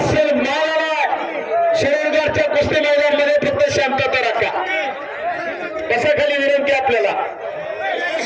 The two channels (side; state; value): both; identical; correlation 1.00